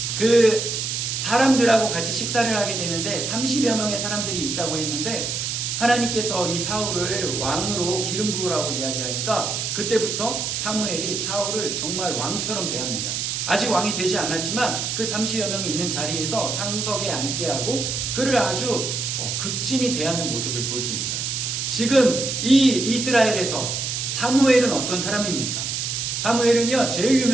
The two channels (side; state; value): right; noise; hiss, 2 dB below the sound